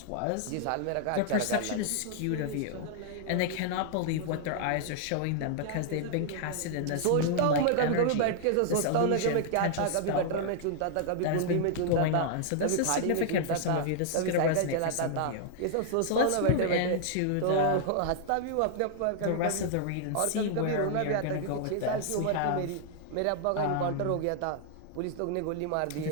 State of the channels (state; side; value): different; both; correlation -0.01